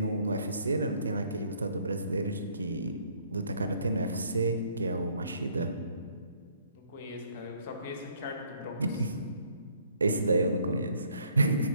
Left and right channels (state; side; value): inverted; both; correlation -0.64